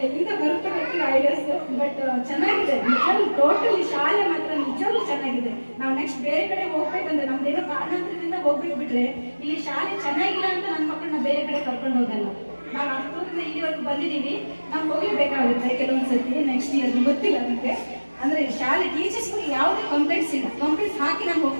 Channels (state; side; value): inverted; both; correlation -1.00